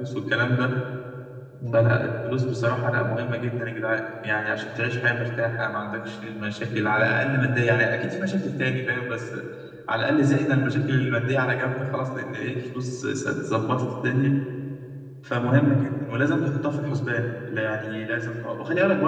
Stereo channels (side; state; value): both; identical; correlation 1.00